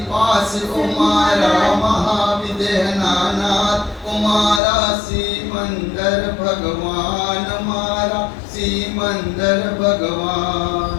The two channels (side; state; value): right; drops out; at 4.6 s